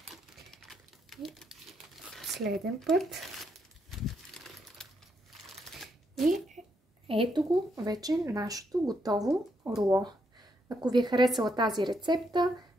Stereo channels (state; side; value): normal; both; correlation 0.77